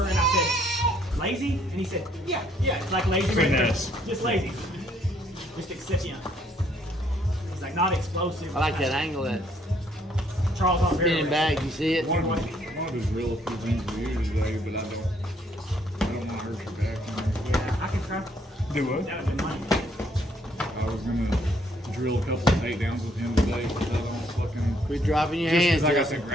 And I said, lazy. And he said, yeah, it's like lazy. Finesse. Just lazy. Just excipient. He's like not explosive. I like that angle, that Charles Oliveira. spinning back. You see it? one of his real few things to do today, but I don't want to hurt your back. Yeah, I can try. do what? That would be money. I was gonna drill a couple of takedowns with him today, but I don't fucking. Quit dropping your Just hands, 'cause I got Justin. the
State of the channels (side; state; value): both; normal; correlation 0.67